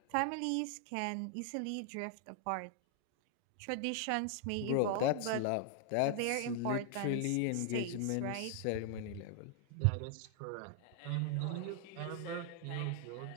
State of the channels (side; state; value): both; different; correlation 0.00